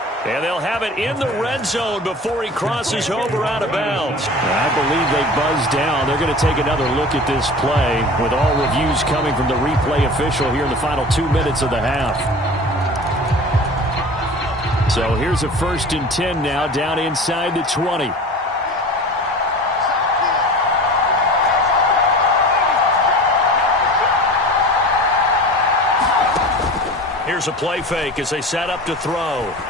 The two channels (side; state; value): both; normal; correlation 0.37